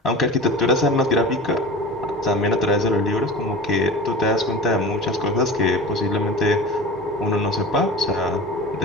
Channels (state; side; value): normal; both; correlation 0.34